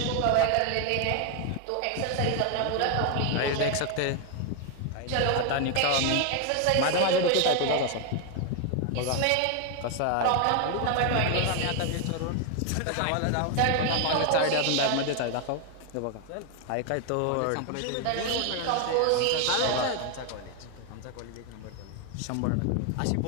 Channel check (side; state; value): both; different; correlation 0.01